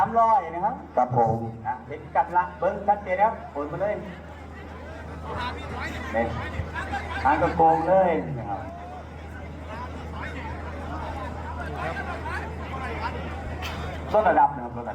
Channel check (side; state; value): both; identical; correlation 1.00